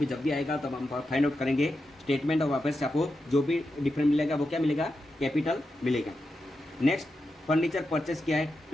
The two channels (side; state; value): both; normal; correlation 0.88